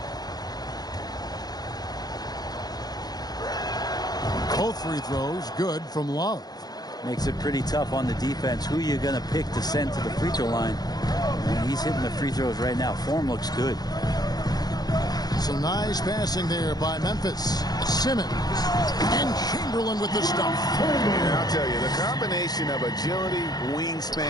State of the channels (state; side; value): late; right; 0.19 ms